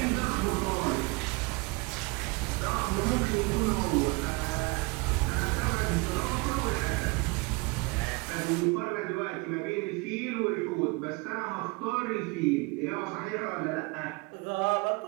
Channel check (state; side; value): quieter; left; 26.7 dB